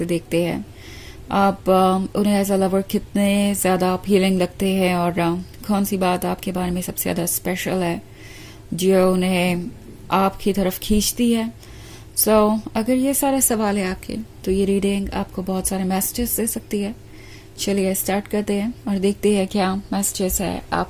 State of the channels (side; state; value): both; identical; correlation 1.00